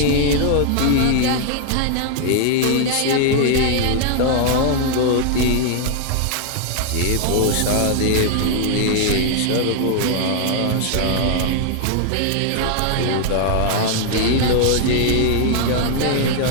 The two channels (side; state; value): both; different; correlation 0.00